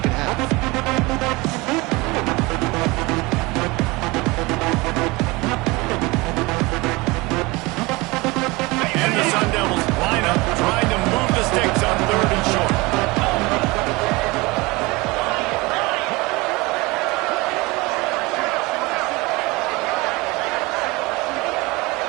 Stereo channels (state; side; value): quieter; left; 23.6 dB